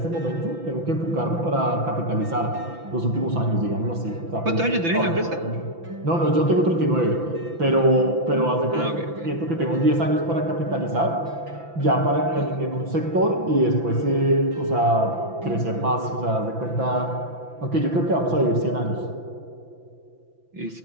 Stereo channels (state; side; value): late; left; 5.9 ms